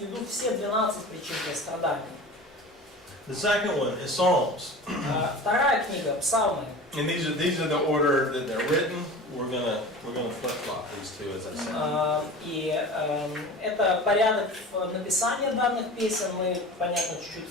виду все 12 причин для страданий. The second one is Psalms. Вторая книга, Псалмы. And these are the order that they're written. We're gonna flip-flop these two, as I said. И это порядок написания данных песен. Мы, понятно,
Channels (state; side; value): normal; both; correlation 0.36